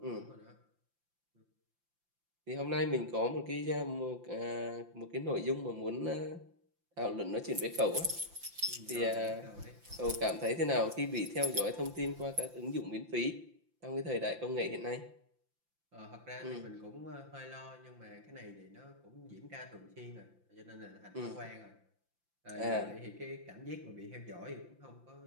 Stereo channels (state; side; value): late; left; 5.8 ms